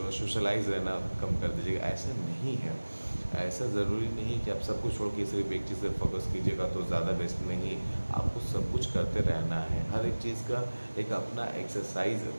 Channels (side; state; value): both; inverted; correlation -1.00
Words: सोशलाइज रहना कम कर दीजिएगा। ऐसा नहीं है। ऐसा ज़रूरी नहीं है कि आप सब कुछ छोड़ के सिर्फ एक चीज़ से फोकस कीजिएगा तो ज़्यादा बेस्ट नहीं। आपको सब कुछ करते रहना है। हर एक चीज़ का एक अपना एक्सरसाइज